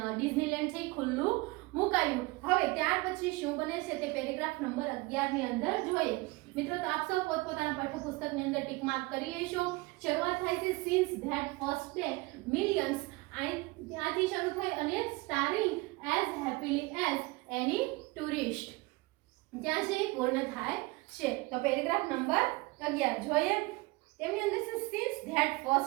ડિઝનીલેન્ડ છે ખુલ્લું મુકાયું। હવે ત્યાર પછી શું બને છે તે પેરેગ્રાફ નંબર 11 ની અંદર જોઈએ। મિત્રો, તો આપ સૌ પોતપોતાના પાઠ્યપુસ્તકની અંદર ટિક માર્ક કરી લેશો। શરૂઆત થાય છે since that first day millions, ત્યાંથી શરૂ થઈ અને સ્ટારિંગ એઝ હેપીલી એઝ એની ટુરિસ્ટ, ત્યાં છે પૂર્ણ થાય છે। તો પેરેગ્રાફ નંબર 11 જોઈએ। તેમની અંદર છે since that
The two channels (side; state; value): left; quieter; 23.8 dB